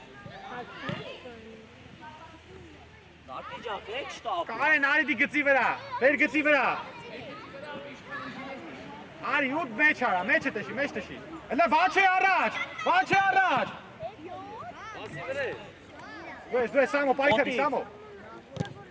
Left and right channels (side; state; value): both; identical; correlation 1.00